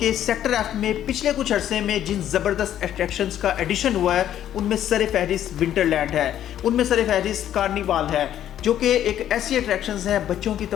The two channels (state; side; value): quieter; right; 11.1 dB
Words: के सेक्टर एफ में पिछले कुछ अरसे में जिन ज़बरदस्त अट्रैक्शंस का एडिशन हुआ है उनमें सर-ए-फहरिस्त विंटरलैंड है, उनमें सर-ए-फहरिस्त कार्निवाल है, जो कि एक ऐसी अट्रैक्शंस हैं बच्चों की